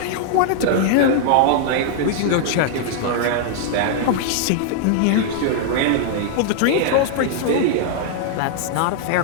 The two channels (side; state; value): both; different; correlation -0.01